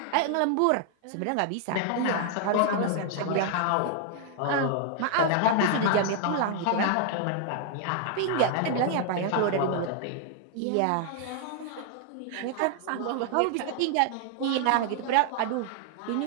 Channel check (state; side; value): different; both; correlation 0.00